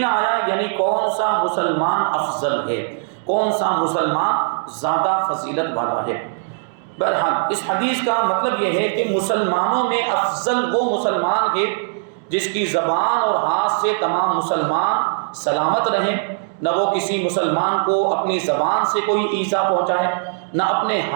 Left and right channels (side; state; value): left; silent; digital silence